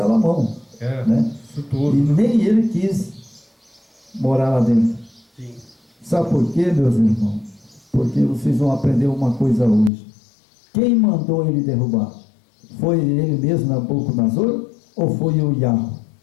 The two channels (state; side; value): drops out; right; at 9.9 s